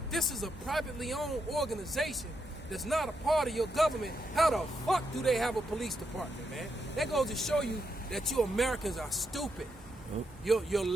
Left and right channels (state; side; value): normal; both; correlation 0.81